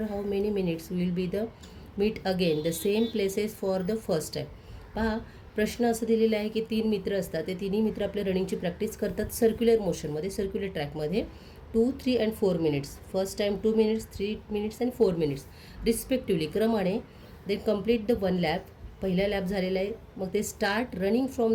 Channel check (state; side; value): identical; both; correlation 1.00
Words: how many minutes will be the meet again the same places for the first time. पहा, प्रश्न असं दिलेला आहे की 3 मित्र असतात. ते तिन्ही मित्र आपल्या रनिंगची प्रॅक्टिस करतात सर्क्युलर मोशनमध्ये, सर्क्युलर ट्रॅकमध्ये. 2, 3 and 4 minutes. First time 2 minutes, 3 minutes and 4 minutes respectively क्रमाने. They complete the 1 lap. पहिला लॅप झालेला आहे. मग ते start running